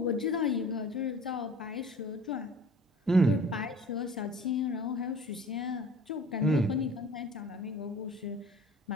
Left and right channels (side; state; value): both; normal; correlation 0.46